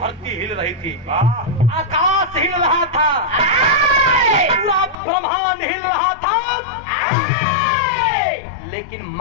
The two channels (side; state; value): right; drops out; at 5.0 s